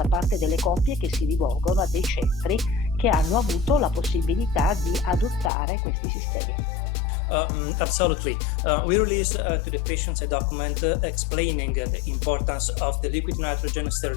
parte delle coppie che si rivolgono a dei centri che hanno avuto la possibilità di adottare questi sistemi. Absolutely. We released to the patients a document explaining the importance of the liquid nitrogen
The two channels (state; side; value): drops out; right; at 5.5 s